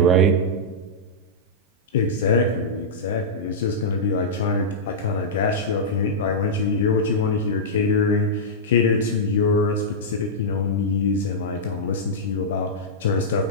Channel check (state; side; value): normal; both; correlation -0.11